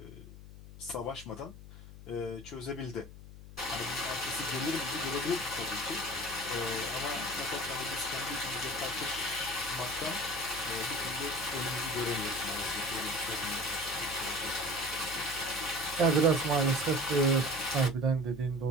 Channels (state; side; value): noise; left; hum, 15 dB below the sound